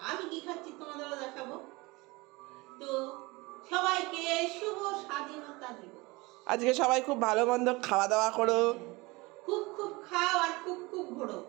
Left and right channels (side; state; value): left; quieter; 23.6 dB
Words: আমি কি খাচ্ছি তোমাদেরও দেখাবো। তো সবাইকে শুভ স্বাধীনতা দিবস। আজকে সবাই খুব ভালো মন্দ খাওয়া দাওয়া করো। খুব খুব খাও আর খুব খুব ঘোরো।